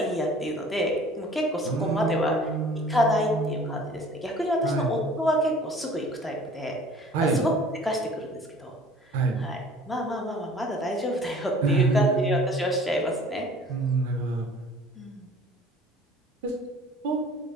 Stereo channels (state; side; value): normal; both; correlation 0.50